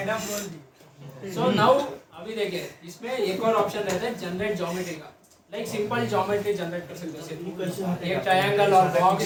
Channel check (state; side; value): identical; both; correlation 1.00